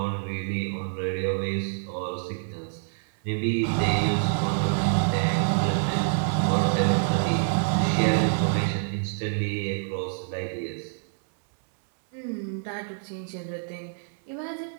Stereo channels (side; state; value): left; silent; 60 dB below the other